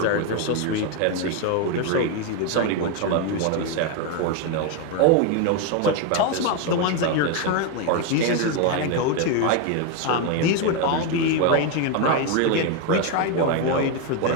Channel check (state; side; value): different; both; correlation 0.02